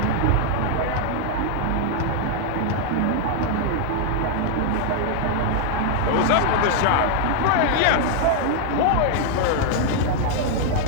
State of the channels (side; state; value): both; different; correlation 0.00